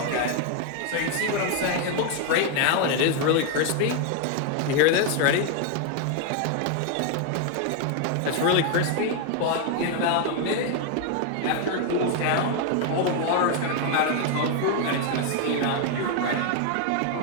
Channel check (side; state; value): both; different; correlation 0.01